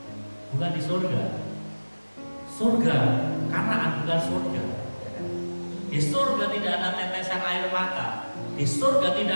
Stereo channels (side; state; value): both; inverted; correlation -1.00